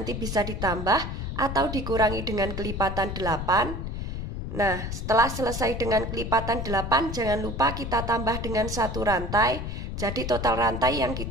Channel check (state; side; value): noise; left; rumble, 5 dB below the sound